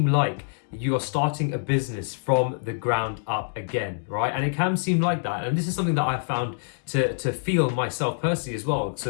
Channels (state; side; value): silent; right; digital silence